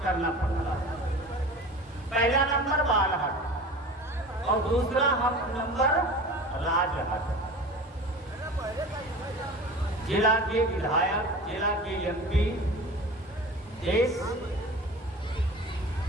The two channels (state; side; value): normal; both; correlation 0.37